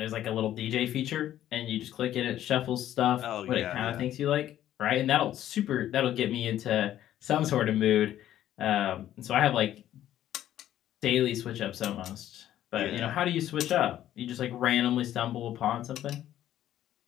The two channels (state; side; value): quieter; right; 12.2 dB